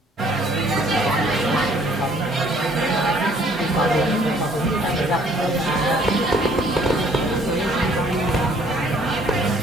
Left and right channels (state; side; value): normal; both; correlation 0.60